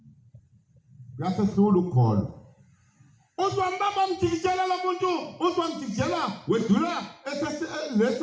Uyasehlula ukukholwa. Uthi wambamba mjikijela lo muntu uthi wamjikijela wedlula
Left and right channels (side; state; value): both; identical; correlation 1.00